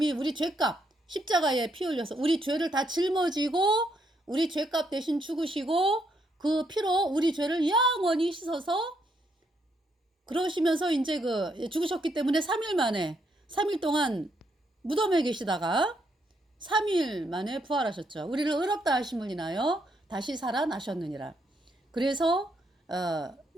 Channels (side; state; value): both; normal; correlation 0.75